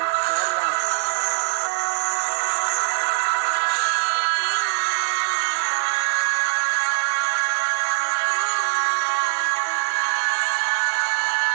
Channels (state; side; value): silent; left; digital silence